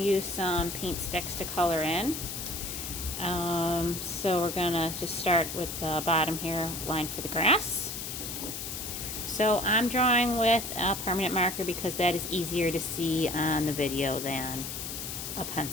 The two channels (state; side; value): noise; left; hiss, 6 dB below the sound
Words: use some paint sticks to color in. So we're going to just start with the bottom here, line for the grass. So I'm drawing with a permanent marker because that is easier to see on the video than a